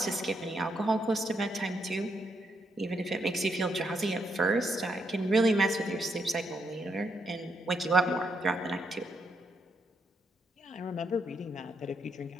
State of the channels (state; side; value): normal; both; correlation 0.78